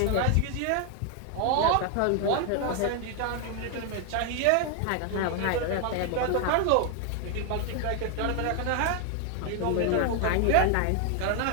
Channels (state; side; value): different; both; correlation 0.01